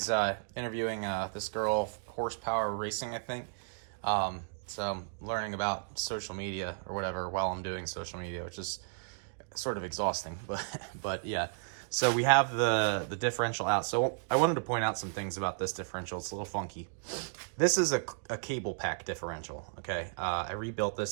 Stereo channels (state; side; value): silent; left; digital silence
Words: interviewing this girl, Horsepower Racing, I think. So I'm learning about social media or whatever while I'm doing social media, which is sort of exhausting. But yeah, So we have the differential out. So I wanted to point out some things about this differential. It's a little funky. This is a cable pack differential, okay? I rebuilt this